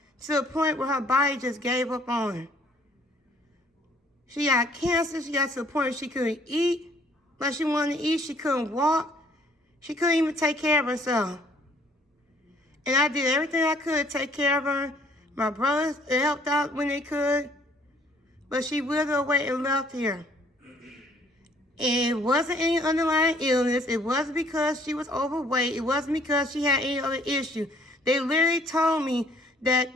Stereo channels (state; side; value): normal; both; correlation 0.61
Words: to the point where her body just gave up on her. She got cancer. She got to the point where she couldn't eat like she wanted to eat. She couldn't walk. She couldn't even take care of herself. And I did everything I could to take care of her. My brothers helped out when they could. But she withered away and left here. And it wasn't any underlying illness. It wasn't because she was overweight. It wasn't because she had any other issue. They literally told me